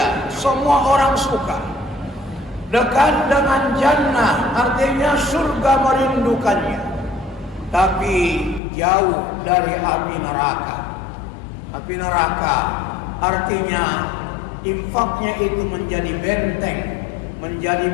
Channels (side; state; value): right; drops out; at 8.6 s